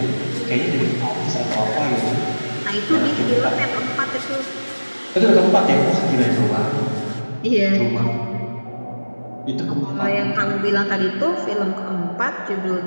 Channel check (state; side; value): inverted; both; correlation -1.00